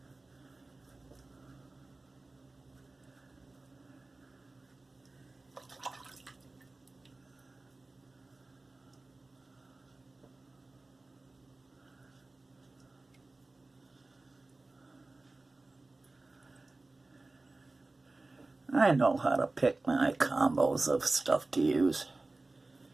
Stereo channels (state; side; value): quieter; left; 3.2 dB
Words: I know how to pick my combos of stuff to use.